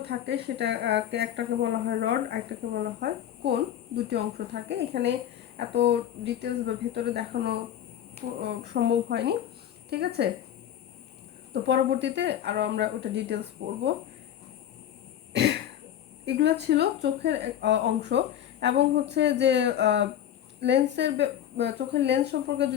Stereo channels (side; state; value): right; quieter; 10.5 dB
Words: থাকে, সেটা একটাকে বলা হয় রড, একটাকে বলা হয় কোন। দুটি অংশ থাকে। এখানে এত ডিটেলস বা ভেতরে দেখানো সম্ভব হয়নি। ঠিক আছে, তো পরবর্তীতে আরও আমরা ওটা ডিটেলস পড়বো। এগুলো ছিল চোখের অংশ। এবং হচ্ছে যে চোখের লেন্স সম্পর্কে